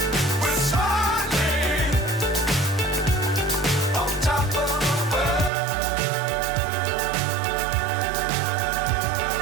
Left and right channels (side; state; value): left; drops out; at 5.5 s